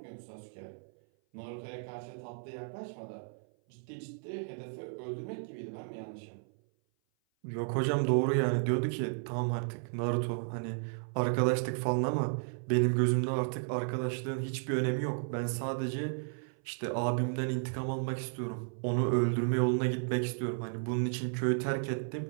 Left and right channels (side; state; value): left; silent; 55 dB below the other